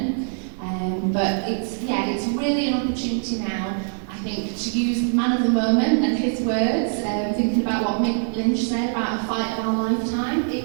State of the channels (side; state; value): left; silent; 63 dB below the other